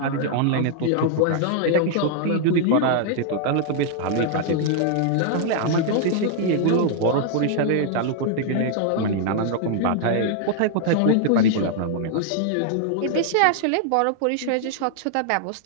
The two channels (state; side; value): different; both; correlation -0.01